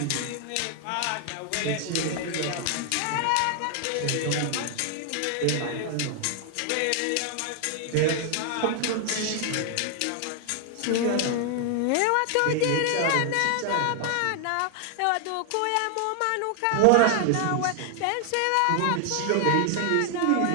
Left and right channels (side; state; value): both; different; correlation 0.00